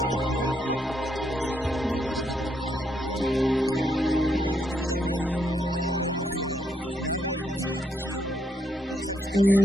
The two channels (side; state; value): both; normal; correlation 0.76